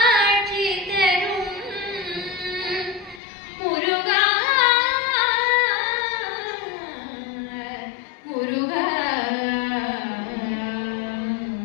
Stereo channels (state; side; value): drops out; right; at 3.2 s